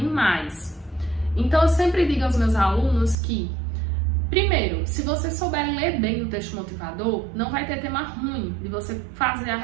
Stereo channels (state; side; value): drops out; left; at 3.2 s